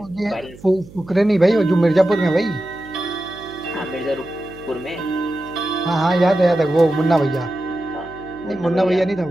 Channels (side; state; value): right; noise; hum, 20 dB below the sound